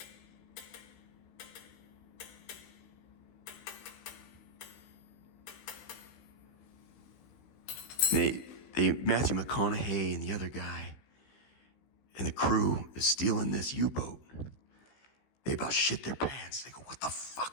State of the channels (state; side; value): late; right; 16 ms